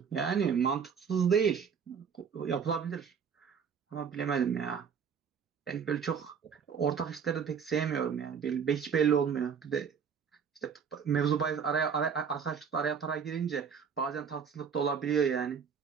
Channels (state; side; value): quieter; left; 6.9 dB